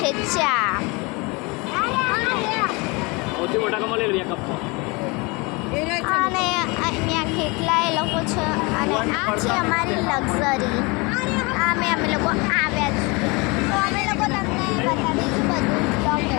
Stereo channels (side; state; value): right; quieter; 27.3 dB